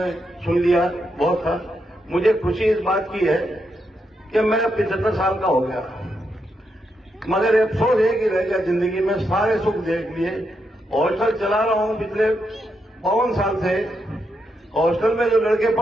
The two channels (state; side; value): normal; both; correlation 0.82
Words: सुन लिया बहुत था। मुझे खुशी इस बात की है कि मैं 75 साल का हो गया, मगर अफसोस है कि रह गया जिंदगी में सारे सुख देख लिए। हॉस्टल चला रहा हूं पिछले 52 साल से। हॉस्टल में जो लड़के